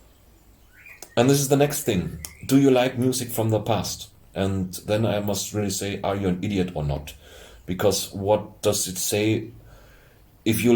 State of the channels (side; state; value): both; identical; correlation 1.00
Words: And this is the next thing. Do you like music from the past? And then I must really say, are you an idiot or not? Because what does it say if you